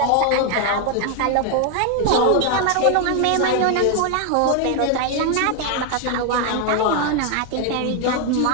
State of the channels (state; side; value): different; both; correlation 0.01